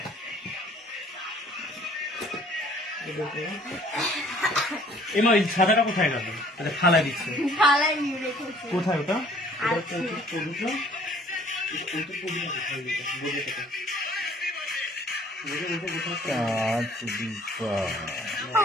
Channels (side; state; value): both; normal; correlation 0.56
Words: এমা ওই সাদাটা কোথায় গেল? আচ্ছা থালায় দিচ্ছে। থালায় নিয়ে রেখেছি। কোথায় ওটা?